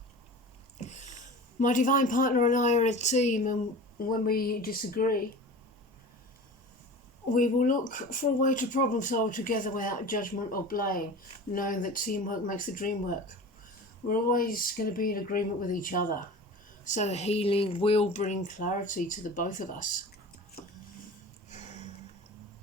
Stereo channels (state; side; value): normal; both; correlation 0.36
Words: My divine partner and I are a team, and when we disagree, we will look for a way to problem solve together without judgment or blame, knowing that teamwork makes the dream work. We're always going to be in agreement with each other, so healing will bring clarity to the both of us.